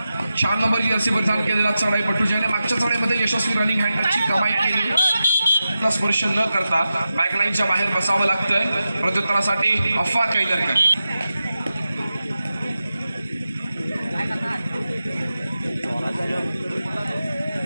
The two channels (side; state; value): both; inverted; correlation -0.92